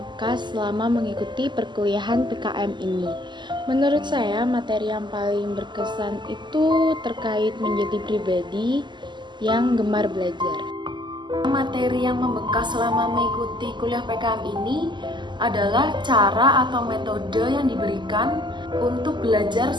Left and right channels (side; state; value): left; late; 0.22 ms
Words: selama mengikuti perkuliahan PKM ini? Menurut saya, materi yang paling berkesan itu terkait menjadi pribadi yang gemar belajar. Materi yang membekas selama mengikuti kuliah PKM ini adalah cara atau metode yang diberikan untuk belajar